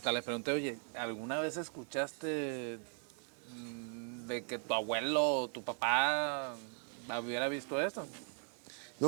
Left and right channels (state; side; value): silent; left; 52 dB below the other